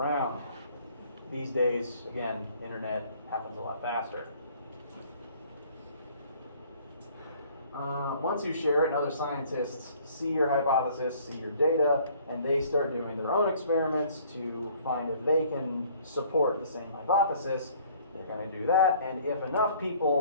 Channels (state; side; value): inverted; both; correlation -0.56